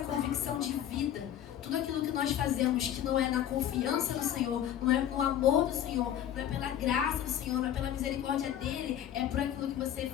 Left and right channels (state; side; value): quieter; right; 10.7 dB